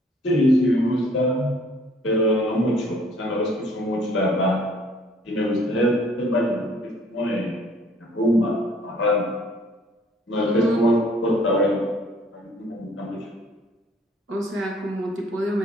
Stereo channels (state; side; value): normal; both; correlation 0.58